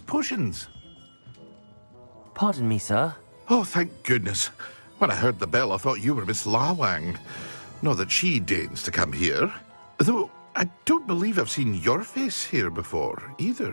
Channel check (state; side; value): inverted; both; correlation -1.00